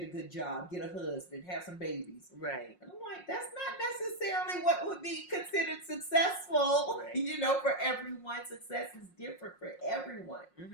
a good job, get a husband, have some babies. Right. And I'm like, that's not necessarily what would be considered successful. Right. For everyone, success is different for everyone.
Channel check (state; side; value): late; right; 5.6 ms